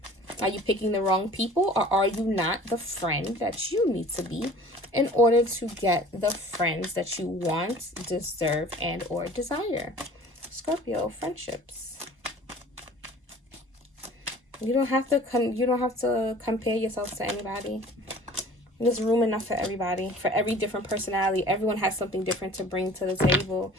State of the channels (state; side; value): normal; both; correlation 0.47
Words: Are you picking the wrong people, or are you not the friend that you need to be in order to get the friends that you want, deserve, and or desire? Scorpio, friendships. You don't have to compare yourself to anybody. There's room enough for everybody, for every different personality. Everyone has something different to bring to the table.